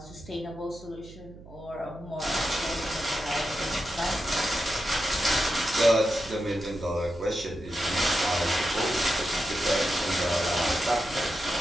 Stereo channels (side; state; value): right; noise; hum, 18 dB below the sound